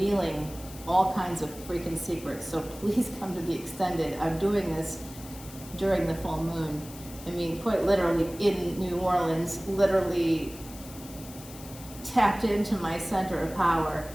all kinds of freaking secrets. So please come to the extended. I'm doing this during the full moon. I mean, quite literally in New Orleans, literally tapped into my center of power.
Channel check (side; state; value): left; noise; hiss, 17 dB below the sound